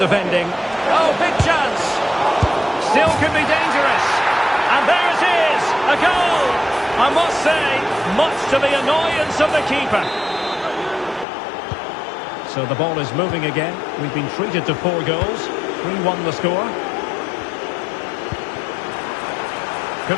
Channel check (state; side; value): drops out; right; at 11.2 s